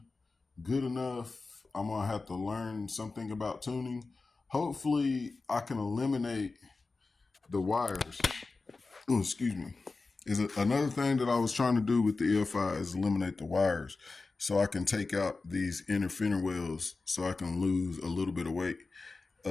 good enough, I'm going to have to learn something about tuning. Hopefully, I can eliminate the wires. Oh, excuse me. Another thing that I was trying to do with the EFI is eliminate the wires so I can take out these inner fender wells so I can lose a little bit of weight.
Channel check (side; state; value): right; quieter; 3.8 dB